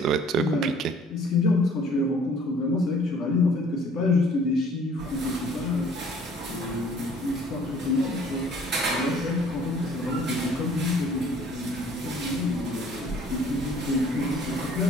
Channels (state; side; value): normal; both; correlation 0.55